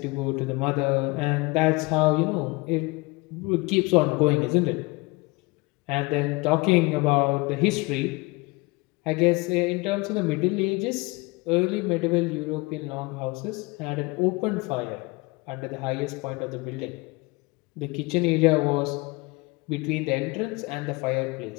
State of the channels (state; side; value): quieter; right; 25.0 dB